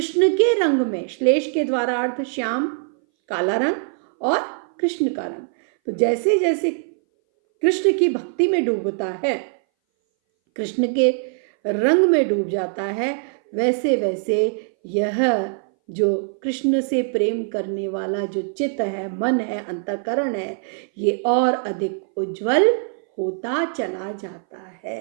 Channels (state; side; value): silent; left; 61 dB below the other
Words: के रंग में, श्लेष के द्वारा अर्थ श्याम काला रंग और कृष्ण का रंग, तो जैसे जैसे कृष्ण की भक्ति में डूबता है, कृष्ण के रंग में डूब जाता है, वैसे वैसे यह जो कृष्ण से प्रेम करने वाला जो चित्त है, मन है, अंतःकरण है, ये और अधिक उज्जवल होता चला जाता है।